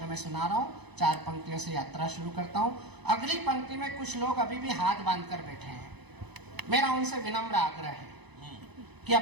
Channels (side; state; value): left; late; 0.99 ms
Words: में सुना रहा हूँ। 4 पंक्तियों से यात्रा शुरू करता हूँ। अगली पंक्ति में कुछ लोग अभी भी हाथ बांधकर बैठे हैं। मेरा उनसे विनम्र आग्रह है कि